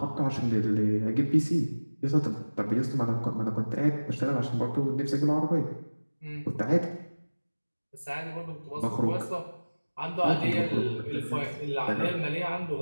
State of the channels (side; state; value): both; inverted; correlation -1.00